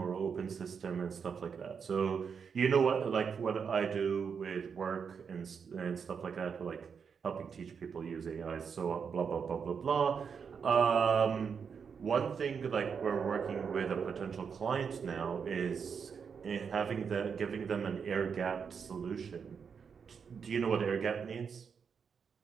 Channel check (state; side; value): quieter; left; 6.4 dB